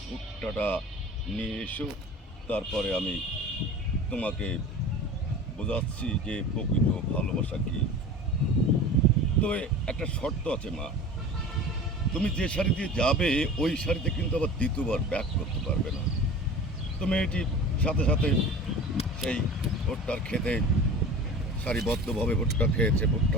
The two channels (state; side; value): normal; both; correlation 0.38